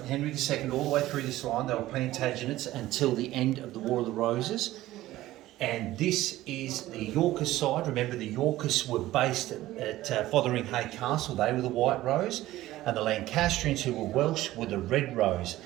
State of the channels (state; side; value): quieter; left; 15.8 dB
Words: Henry II all the way through this line. They were Plantagenets until the end of the War of the Roses. And this is the Yorkist side. Remember, the Yorkists were based at Fotheringhay Castle. They were the White Rose. And the Lancastrians, who were Welsh, were the Red Rose.